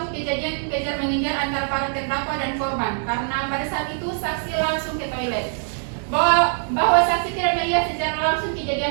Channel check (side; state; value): left; silent; 63 dB below the other